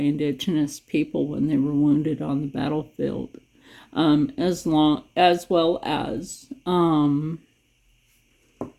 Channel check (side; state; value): both; identical; correlation 1.00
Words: people when they were wounded on the battlefield, as well as